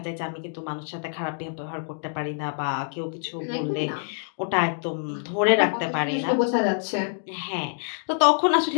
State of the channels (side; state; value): right; silent; digital silence